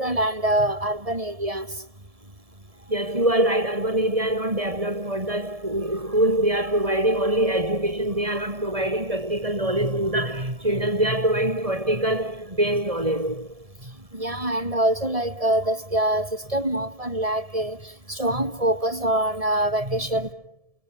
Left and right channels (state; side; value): late; left; 1.7 ms